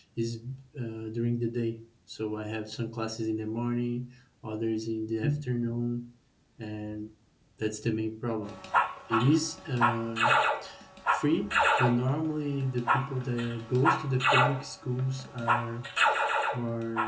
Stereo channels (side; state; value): both; identical; correlation 1.00